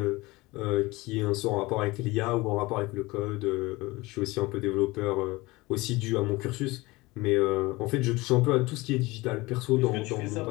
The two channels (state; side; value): quieter; right; 21.7 dB